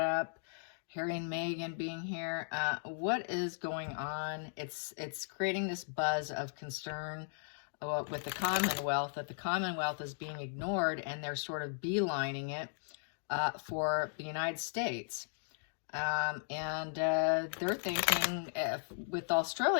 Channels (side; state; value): right; silent; digital silence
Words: Harry and Meghan being here. What is going on? It's creating this buzz of concern with the Commonwealth, that the Commonwealth is being ignored, and they're sort of beelining it for the United States. They're thinking, with